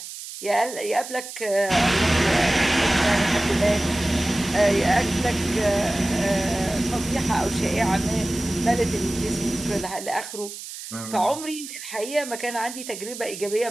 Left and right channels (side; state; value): right; noise; hiss, 11 dB below the sound